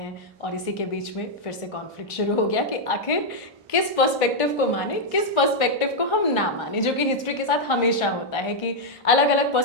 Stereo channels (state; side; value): normal; both; correlation -0.01